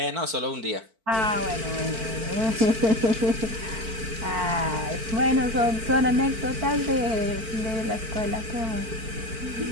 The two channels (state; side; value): late; left; 4.5 ms